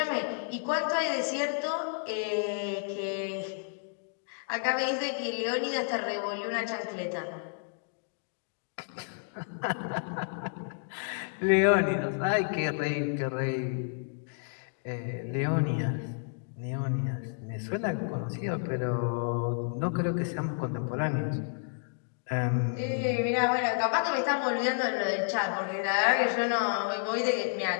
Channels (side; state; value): right; silent; digital silence